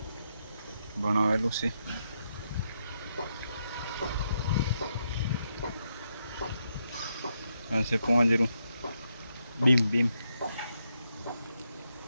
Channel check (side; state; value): both; inverted; correlation -0.81